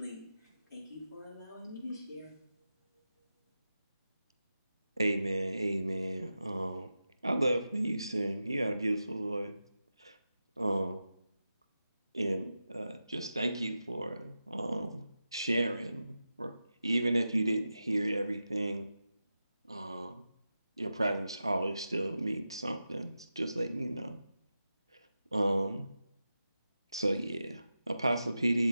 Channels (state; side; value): inverted; both; correlation -0.91